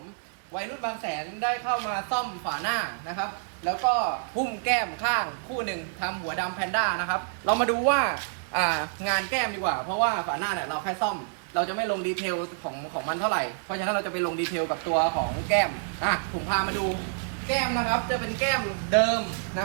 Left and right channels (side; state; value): left; silent; 60 dB below the other